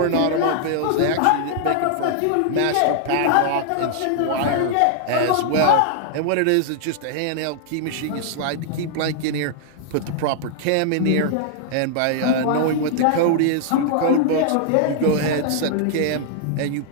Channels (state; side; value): different; both; correlation -0.01